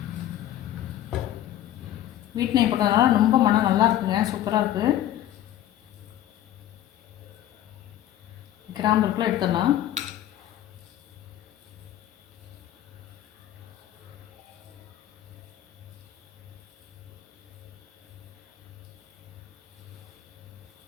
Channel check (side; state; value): right; quieter; 12.3 dB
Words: வீட்டு நெய் போட்டதுனால ரொம்ப மனம் நல்லா இருக்குங்க, சூப்பராக இருக்குது. கிராம்பு இருக்குள்ள எடுத்துடலாம்.